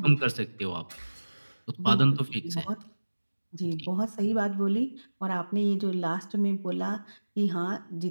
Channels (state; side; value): inverted; both; correlation -1.00